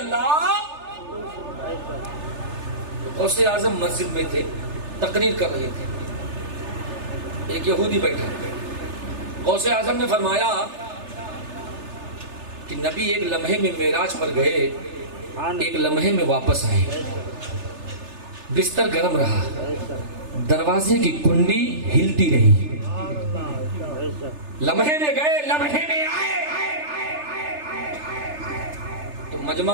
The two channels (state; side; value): late; left; 3.3 ms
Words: غوث اعظم مسجد میں تھے، تقریر کر رہے تھے، ایک یہودی بیٹھا۔ غوث اعظم نے فرمایا کہ نبی ایک لمحے میں معراج پر گئے، ایک لمحے میں واپس آئے، بستر گرم رہا، دروازے کی کنڈی ہلتی رہی، لمحے میں گئے لمحے میں آئے۔ تو